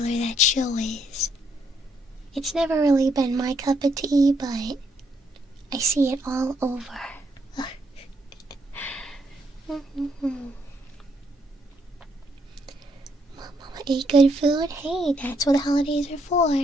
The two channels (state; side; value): normal; both; correlation 0.73